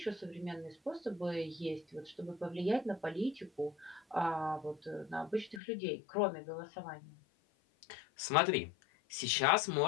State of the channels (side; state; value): right; drops out; at 5.6 s